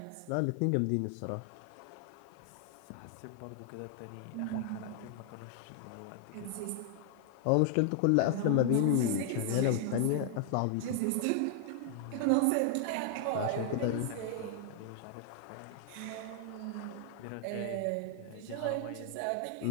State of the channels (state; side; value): different; both; correlation 0.00